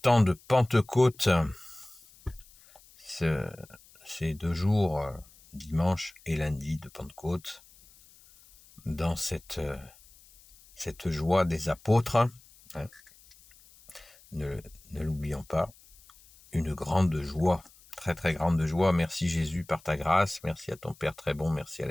de Pentecôte, ces 2 jours, dimanche et lundi de Pentecôte, dans cette joie des apôtres. Ne l'oublions pas, une grande joie, très très grande joie. Merci Jésus par ta grâce, merci à ton Père très bon, merci à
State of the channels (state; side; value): noise; left; hiss, 26 dB below the sound